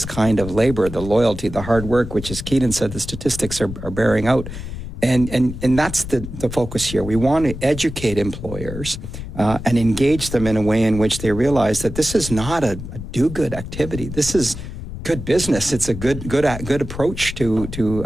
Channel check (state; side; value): noise; left; rumble, 9 dB below the sound